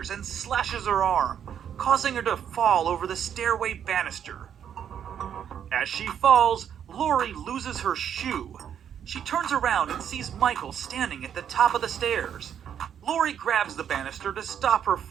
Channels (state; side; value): quieter; left; 8.9 dB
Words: and slashes her arm, causing her to fall over the stairway banister. As she falls, Lori loses her shoe. She turns around and sees Michael standing at the top of the stairs. Lori grabs the banister to stop her